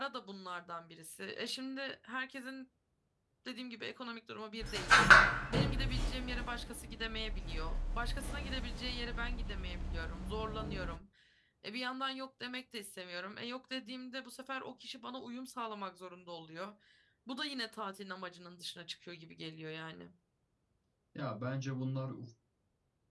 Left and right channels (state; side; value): identical; both; correlation 1.00